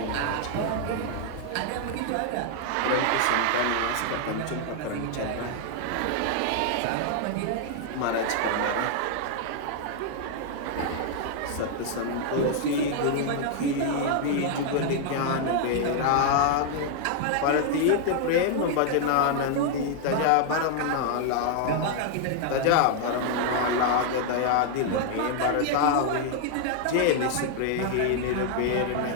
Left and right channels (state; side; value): different; both; correlation 0.00